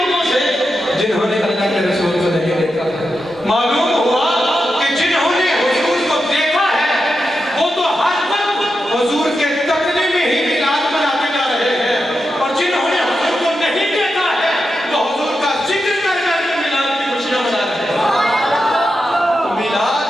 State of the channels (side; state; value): both; normal; correlation 0.88